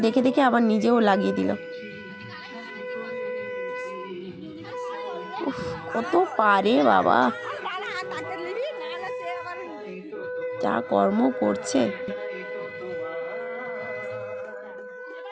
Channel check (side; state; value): both; identical; correlation 1.00